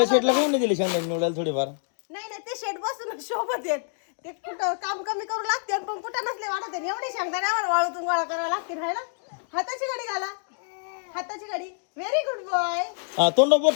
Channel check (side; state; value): right; silent; digital silence